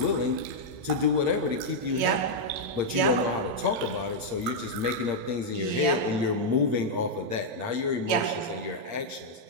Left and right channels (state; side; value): late; left; 8.7 ms